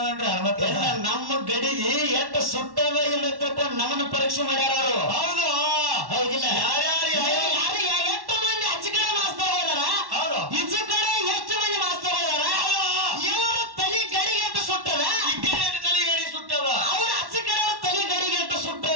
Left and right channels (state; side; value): late; left; 1.1 ms